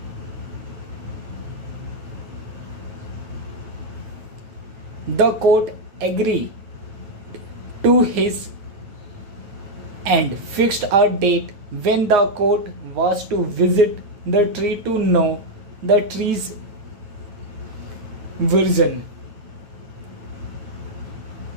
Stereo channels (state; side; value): late; left; 9.1 ms